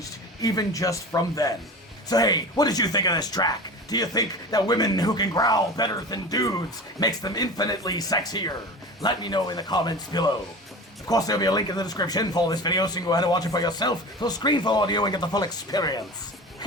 even just from then. So hey, what did you think of this track? Do you think that women who can growl better than dudes makes them infinitely sexier? Let me know in the comments below. Of course, there'll be a link in the description for this video, so you can go ahead and watch it for yourself. So screen for audio and get the full experience.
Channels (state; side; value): normal; both; correlation 0.33